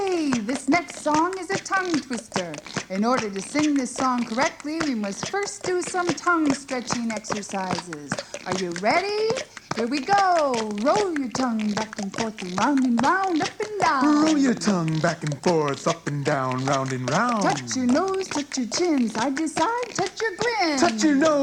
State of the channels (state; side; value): identical; both; correlation 1.00